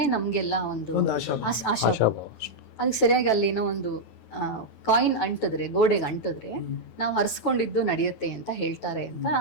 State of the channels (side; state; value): right; late; 9.2 ms